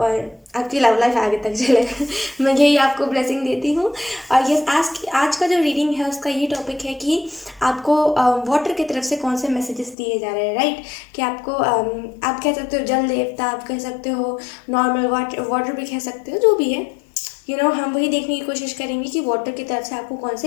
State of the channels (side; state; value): right; drops out; at 10.0 s